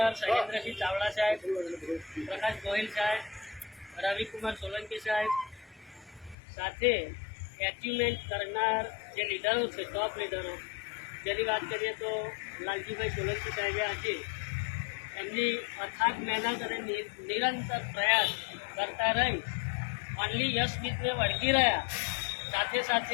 શૈલેન્દ્રસિંહ ચાવડા સાહેબ, પ્રકાશ ગોહિલ સાહેબ, રવિકુમાર સોલંકી સાહેબ સાથે એચિવમેન્ટ કરનાર જે લીડરો છે, ટોપ લીડરો, જેની વાત કરીએ તો લાલજીભાઈ સોલંકી સાહેબે આજે એમની અથાગ મહેનત અને નિરંતર પ્રયાસ કરતા રહી ઓનલી યશવીતને વળગી રહ્યા. સાથે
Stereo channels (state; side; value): drops out; right; at 6.4 s